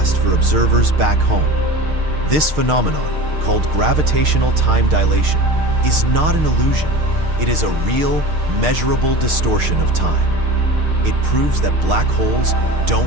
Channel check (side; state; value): left; late; 6.5 ms